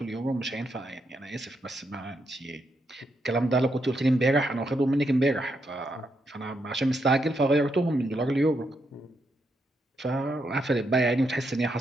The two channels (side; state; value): both; normal; correlation 0.80